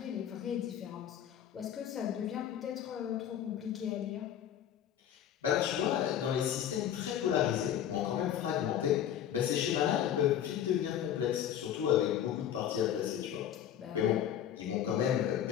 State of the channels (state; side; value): quieter; right; 10.2 dB